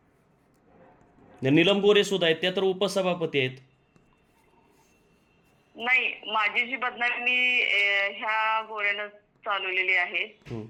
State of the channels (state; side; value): identical; both; correlation 1.00